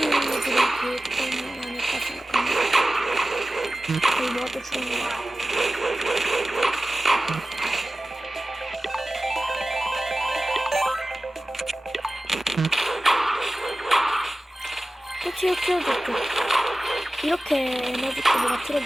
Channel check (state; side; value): normal; both; correlation 0.96